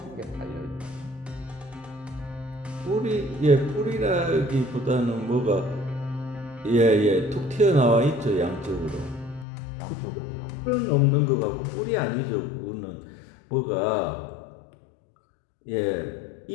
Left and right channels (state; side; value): drops out; right; at 9.5 s